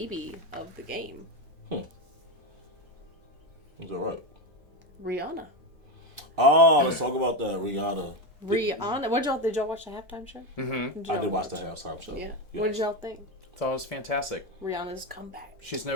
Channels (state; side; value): normal; both; correlation 0.13